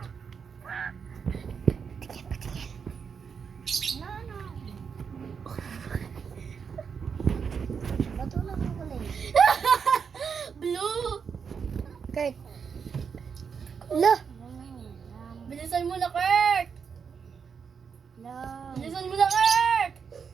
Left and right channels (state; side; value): quieter; left; 6.4 dB